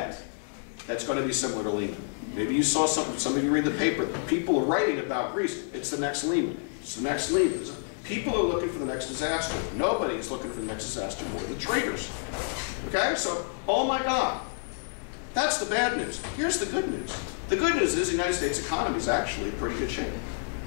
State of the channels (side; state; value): right; silent; digital silence